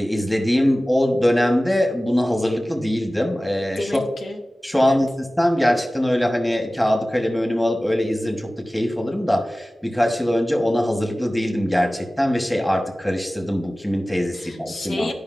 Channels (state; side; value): normal; both; correlation 0.97